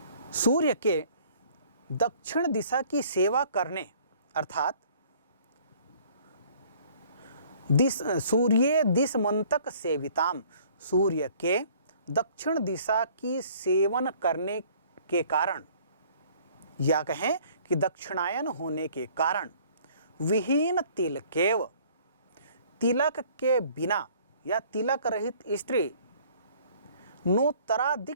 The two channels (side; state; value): both; inverted; correlation -0.56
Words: सूर्य के दक्षिण दिशा की सेवा करने अर्थात सूर्य दिशमंतक सेविताम, सूर्य के दक्षिण दिशा की सेवन करने के कारण या कहें कि दक्षिणायन होने के कारण विहीन तिलकेव, तिलक के बिना या तिलक रहित स्त्री नोत्तरा